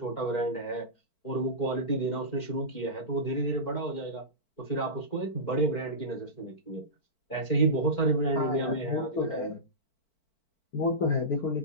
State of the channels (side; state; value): right; late; 4.5 ms